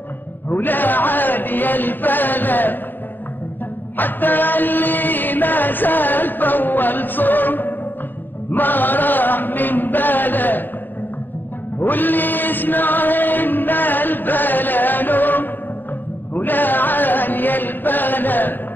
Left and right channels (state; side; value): late; right; 0.092 ms